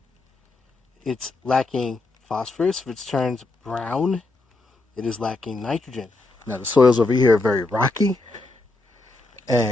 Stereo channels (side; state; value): right; quieter; 3.1 dB